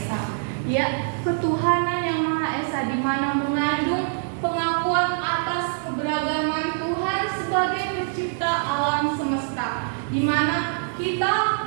Ya, ketuhanan yang Maha Esa, di mana mengandung pengakuan atas keberagaman Tuhan sebagai pencipta alam semesta, di mana kita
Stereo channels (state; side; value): silent; left; digital silence